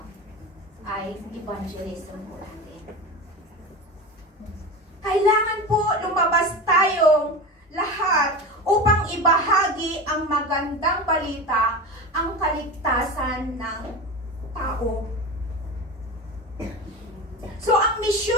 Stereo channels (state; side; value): normal; both; correlation 0.26